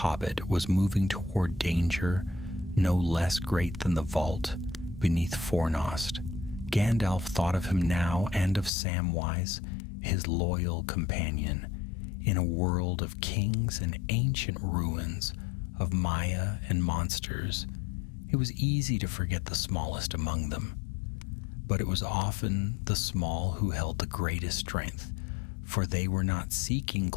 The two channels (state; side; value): drops out; right; at 8.7 s